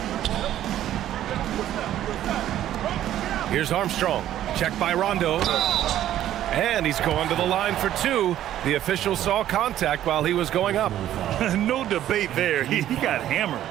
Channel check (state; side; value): quieter; left; 12.2 dB